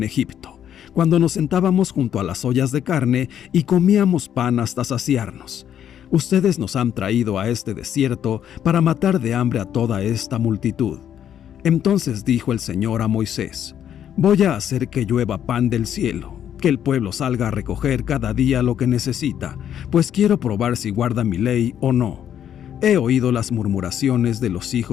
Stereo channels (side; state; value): right; quieter; 9.7 dB